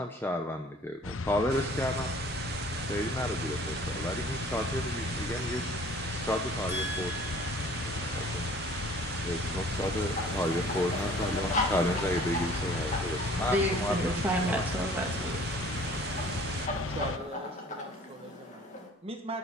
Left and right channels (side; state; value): both; normal; correlation 0.51